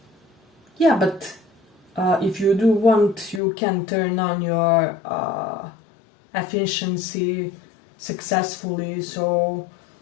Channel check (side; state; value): right; drops out; at 3.4 s